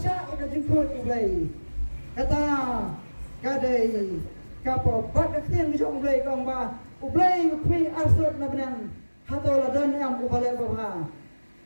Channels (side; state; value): both; inverted; correlation -1.00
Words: ka jing khot blai kata kadai kapopat ka tiang jong blai kong ba ublai ngui arsot na benang hatola dan am ubale babha